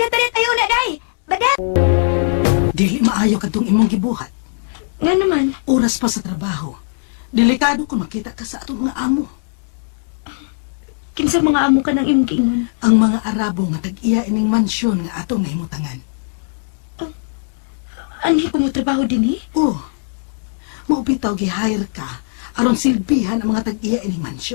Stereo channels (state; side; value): silent; right; digital silence